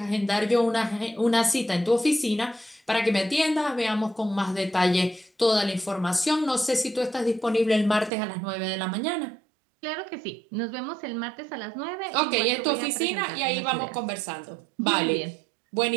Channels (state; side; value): drops out; left; at 8.1 s